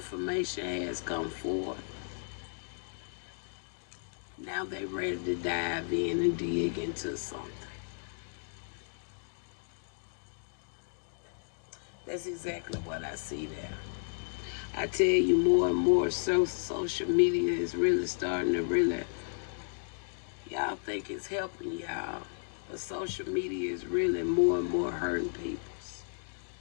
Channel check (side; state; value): right; silent; digital silence